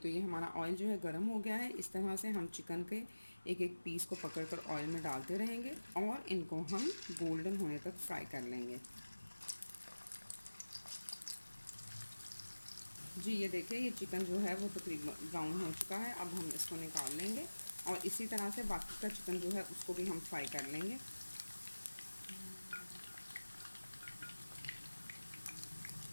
ये हमारा ऑयल जो है गर्म हो गया है। इस तरह से हम चिकन के एक एक पीस को पकड़कर ऑयल में डालते रहेंगे और इनको हम गोल्डन होने तक फ्राई कर लेंगे। जी, ये देखिए ये चिकन जो है वो तकरीबन ब्राउन हो चुका है। अब हम इसको निकाल लेंगे और इसी तरह से बाकी का चिकन जो है उसको भी हम फ्राई कर लेंगे।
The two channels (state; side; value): inverted; both; correlation -1.00